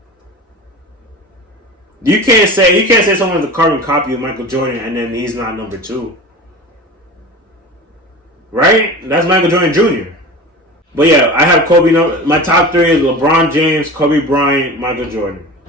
You can't say someone's a carbon copy of Michael Jordan and then he's not number 2. Right? That's Michael Jordan Jr. But yeah, I have Kobe. My top 3 is LeBron James, Kobe Bryant, Michael Jordan.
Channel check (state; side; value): normal; both; correlation 0.33